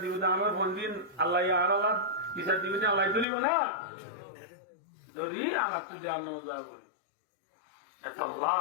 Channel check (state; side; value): drops out; right; at 3.2 s